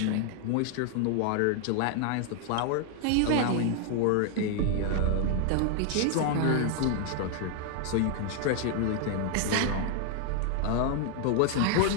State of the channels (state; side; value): different; both; correlation 0.00